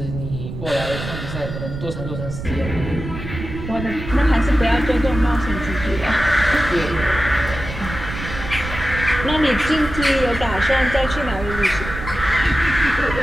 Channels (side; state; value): right; noise; rumble, 8 dB below the sound